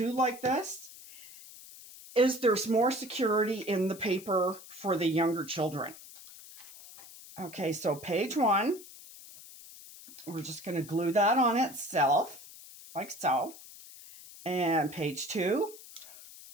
like this is there's more security in the paper for the younger children. Okay, so page 1, we're just going to glue that on itself, like so. And page 2,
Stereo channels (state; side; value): noise; left; hiss, 18 dB below the sound